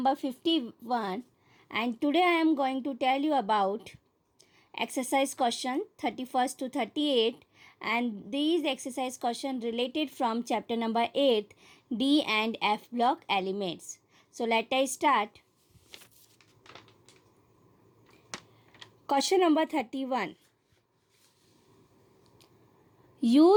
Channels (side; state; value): both; identical; correlation 1.00